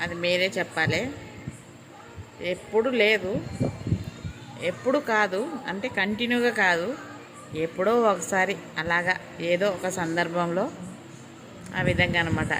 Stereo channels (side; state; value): both; identical; correlation 1.00